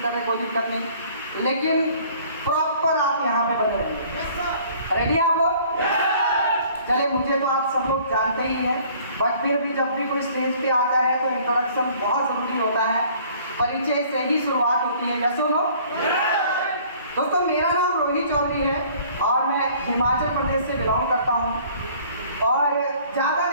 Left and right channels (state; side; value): inverted; both; correlation -0.54